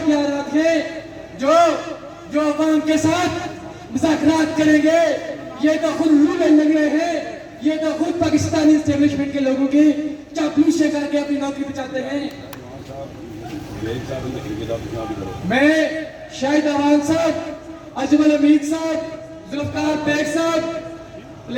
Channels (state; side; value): identical; both; correlation 1.00